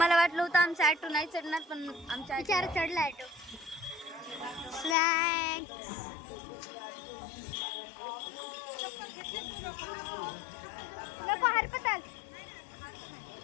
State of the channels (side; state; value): right; drops out; at 5.0 s